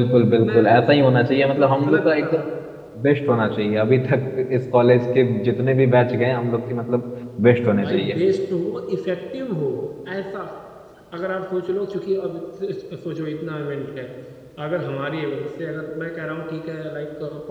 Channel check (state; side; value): identical; both; correlation 1.00